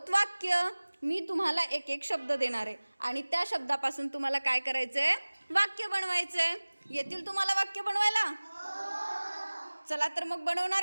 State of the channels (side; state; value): both; inverted; correlation -1.00